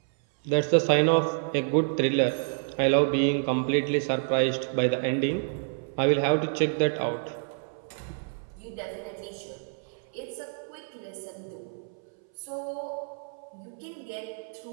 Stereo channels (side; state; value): left; silent; 59 dB below the other